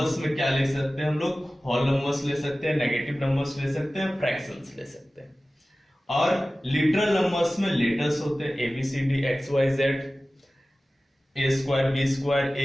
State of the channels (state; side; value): normal; both; correlation 0.96